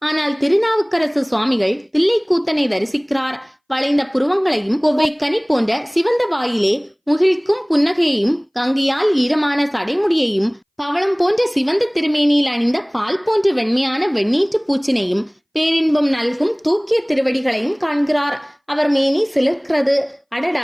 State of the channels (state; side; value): identical; both; correlation 1.00